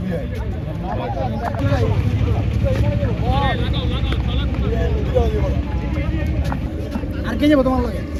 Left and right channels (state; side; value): identical; both; correlation 1.00